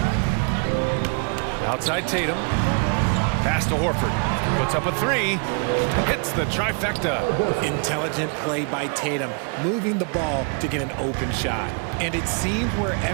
Outside Tatum. Pass to Horford. Puts up a 3. Hits the trifecta. Intelligent play by Tatum, moving the ball to get an open shot. And it seems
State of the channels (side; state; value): left; quieter; 38.5 dB